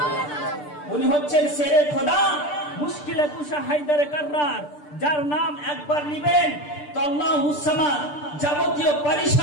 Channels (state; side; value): late; right; 6.8 ms